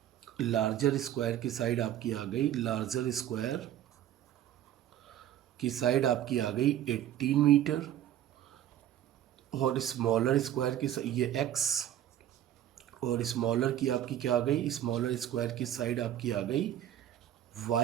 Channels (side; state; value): left; quieter; 11.5 dB